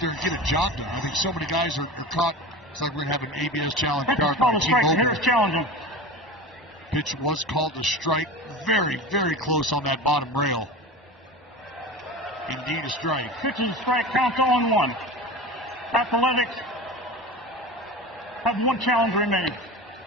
and get a job done. I think so many guys are caught. It's like we're going to have an ABS challenge card by T-Mobile. Challenging. Pitch was called a strike. Very close on that bottom rail. Indeed a strike. Pitch and strike, counts 0-1. Athletics have 1 challenge remaining.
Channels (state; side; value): normal; both; correlation 0.31